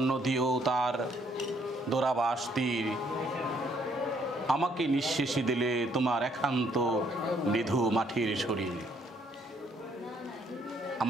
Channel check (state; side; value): normal; both; correlation 0.67